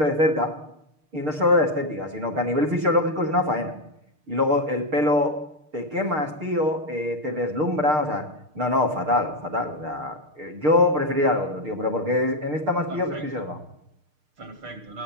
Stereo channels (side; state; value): left; late; 6.6 ms